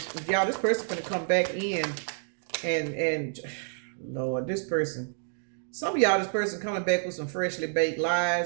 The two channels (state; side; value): silent; left; digital silence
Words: y'all, this person gonna come back in and Lord, this person, some of y'all, this person coming back with some freshly baked